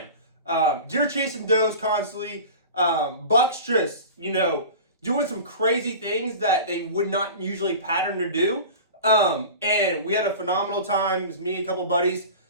Deer chasing does constantly. Bucks just, doing some crazy things that they would not usually pattern to do. And we had a phenomenal time. It was me, a couple buddies.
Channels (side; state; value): both; inverted; correlation -0.35